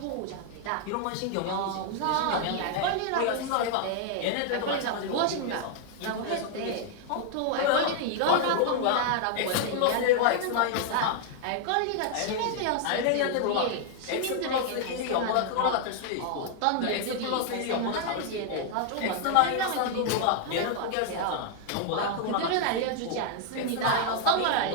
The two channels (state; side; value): different; both; correlation 0.00